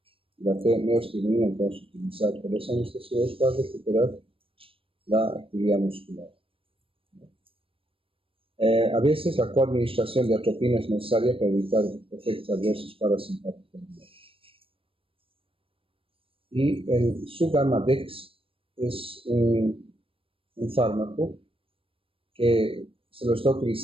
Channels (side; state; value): left; late; 0.26 ms